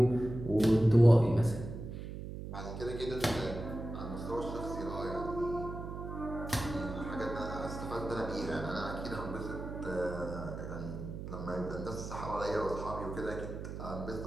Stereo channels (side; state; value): right; noise; hum, 8 dB below the sound